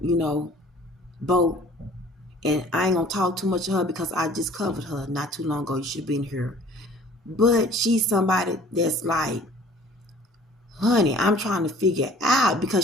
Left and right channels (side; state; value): both; normal; correlation 0.51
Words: boat. And I ain't going to talk too much of her because I just covered her not too long ago. You should have been here. But she's somebody that's like, honey, I'm trying to figure out,